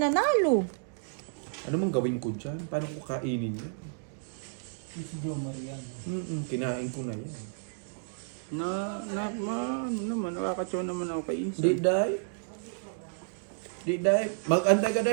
Ano mang gawin ko dyan? Paano ko kainin yan? Si Joe Marian. Kinain ko na yan. Ano naman, nakakatsaw naman ako kay Insan. Di day. Di day. Mag-antay ka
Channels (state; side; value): silent; left; digital silence